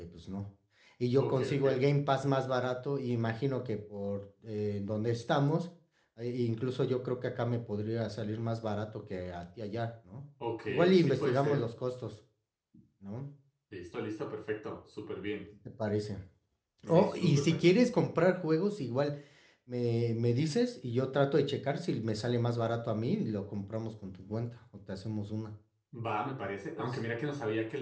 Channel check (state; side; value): identical; both; correlation 1.00